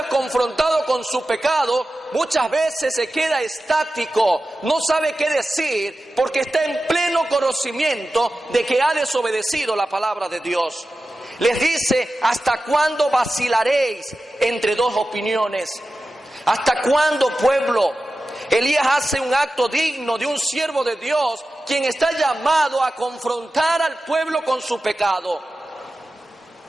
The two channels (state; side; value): normal; both; correlation 0.94